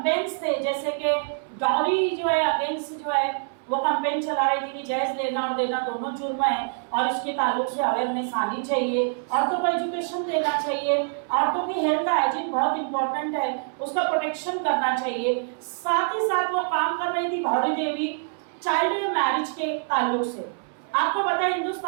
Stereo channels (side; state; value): left; silent; 61 dB below the other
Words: थे, जैसे कि डॉरी जो है अगेंस्ट जो है वो कैंपेन चला रही थी कि जहेज लेना और देना दोनों जुर्म है और इसके ताल्लुक से अवेयरनेस आनी चाहिए, औरतों को एजुकेशन देना चाहिए, औरतों की हेल्थ हाइजीन बहुत इंपॉर्टेंट है, उसका प्रोटेक्शन करना चाहिए। साथ ही साथ वो काम कर रही थी भौरी देवी चाइल्ड मैरिज के ताल्लुक से। आपको पता है